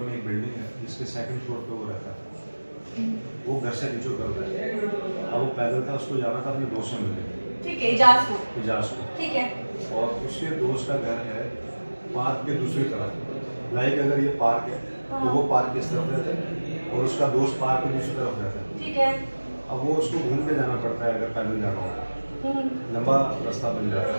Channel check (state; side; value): inverted; both; correlation -1.00